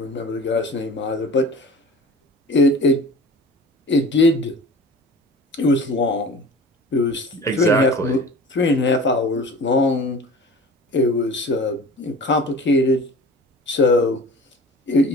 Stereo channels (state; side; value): normal; both; correlation 0.40